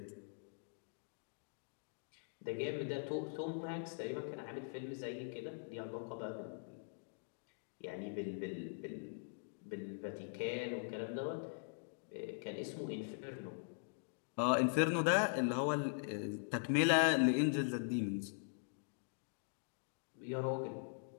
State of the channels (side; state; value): right; silent; digital silence